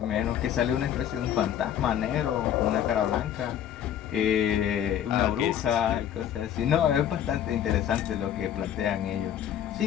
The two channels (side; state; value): right; quieter; 10.1 dB